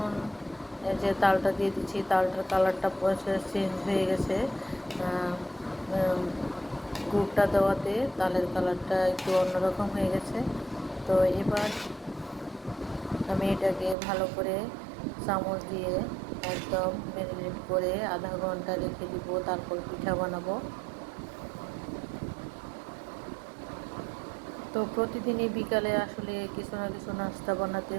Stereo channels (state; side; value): drops out; left; at 14.0 s